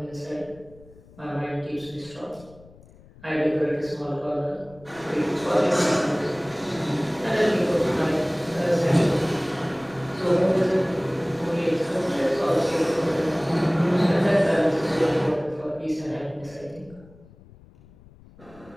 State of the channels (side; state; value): left; noise; rumble, 24 dB below the sound